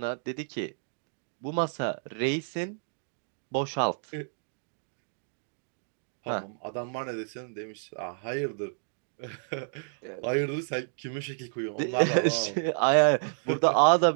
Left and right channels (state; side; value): silent; left; digital silence